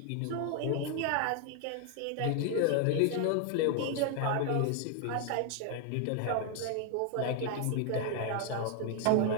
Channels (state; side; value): different; both; correlation 0.00